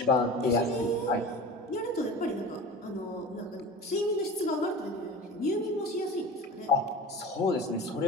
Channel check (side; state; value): both; normal; correlation 0.35